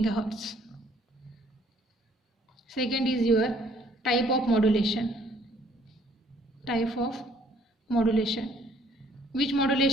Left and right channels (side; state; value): both; normal; correlation 0.62